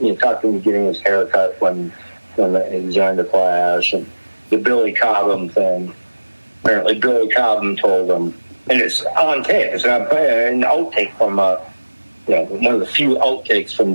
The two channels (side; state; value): both; inverted; correlation -1.00